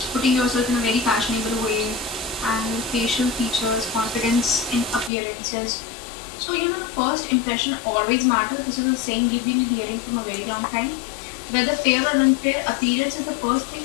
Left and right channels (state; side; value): drops out; right; at 5.1 s